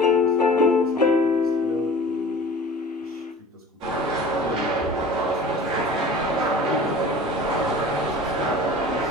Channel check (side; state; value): both; normal; correlation 0.41